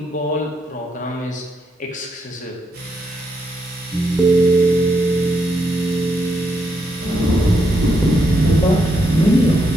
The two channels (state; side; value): normal; both; correlation 0.79